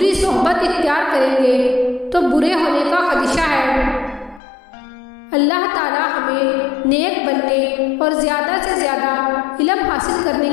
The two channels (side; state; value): right; drops out; at 4.4 s